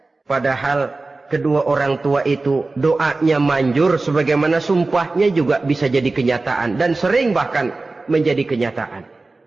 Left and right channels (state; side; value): quieter; left; 3.4 dB